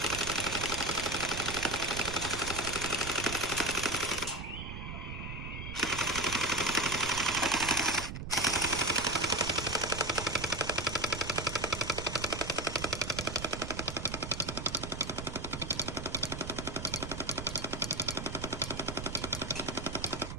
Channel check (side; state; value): right; noise; rumble, 7 dB below the sound